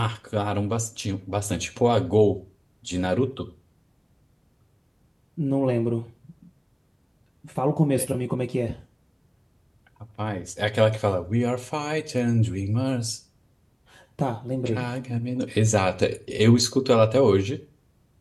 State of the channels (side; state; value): both; identical; correlation 1.00